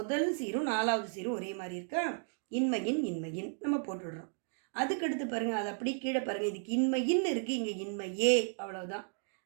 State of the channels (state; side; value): silent; left; 55 dB below the other